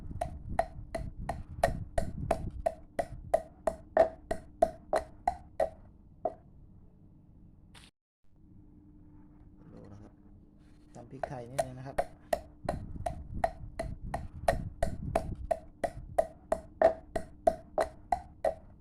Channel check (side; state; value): both; identical; correlation 1.00